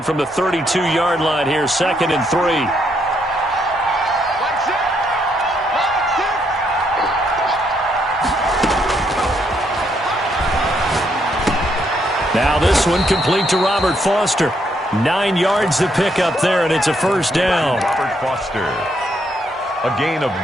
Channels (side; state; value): both; normal; correlation 0.74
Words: from the 32-yard line here, 2nd and 3. Now this one complete to Robert Foster. 9 yards to pick up there, and it's a 1st down. Robert Foster. A gain of